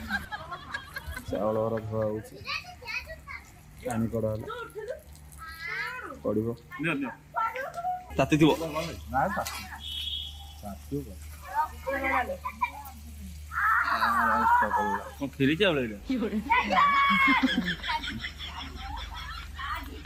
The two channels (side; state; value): both; identical; correlation 1.00